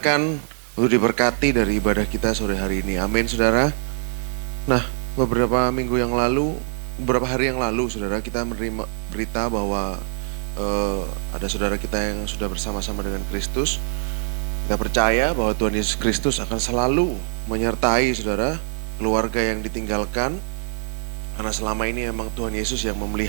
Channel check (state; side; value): silent; left; 61 dB below the other